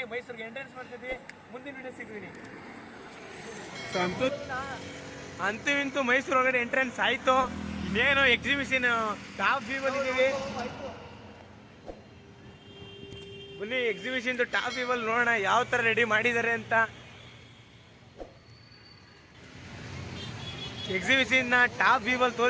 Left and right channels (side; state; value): both; identical; correlation 1.00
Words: ಮೈಸೂರಿಗೆ ಎಂಟ್ರೆನ್ಸ್ ಮಾಡ್ತಿದ್ವಿ. ಮುಂದಿನ ವಿಡಿಯೋ ಸಿಗ್ತೀನಿ. ಅಂತೂ ಇಂತೂ ಮೈಸೂರು ಒಳಗಡೆ ಎಂಟ್ರೆನ್ಸ್ ಆಯ್ತು. ಇನ್ನೇನು ಎಕ್ಸಿಬಿಷನ್ ಟಾಪ್ ವ್ಯೂ ಬಂದಿದ್ದೀವಿ. ಬನ್ನಿ ಎಕ್ಸಿಬಿಷನ್ ಟಾಪ್ ವ್ಯೂ ಅಲ್ಲಿ ನೋಡೋಣ ಯಾವ ತರ ರೆಡಿ ಮಾಡಿದ್ದಾರೆ ಅಂತ. ಎಕ್ಸಿಬಿಷನ್ ಟಾಪ್ ವ್ಯೂ ಅಲ್ಲಿ